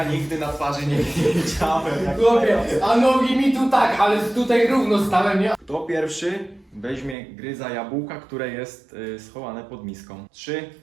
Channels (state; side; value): drops out; left; at 7.2 s